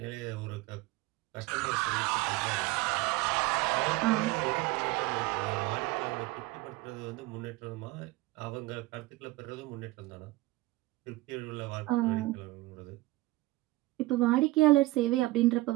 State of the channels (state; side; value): quieter; left; 19.3 dB